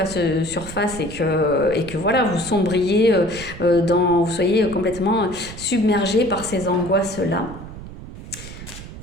surface et que voilà, vous sombriez vous soyez complètement submergé par ces angoisses-là.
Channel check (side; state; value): right; noise; rumble, 13 dB below the sound